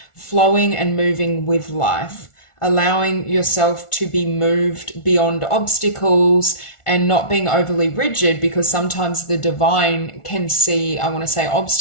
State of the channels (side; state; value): right; late; 1.4 ms